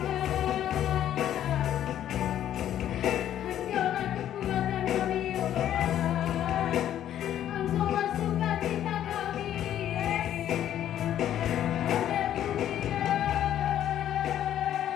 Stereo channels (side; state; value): right; quieter; 11.2 dB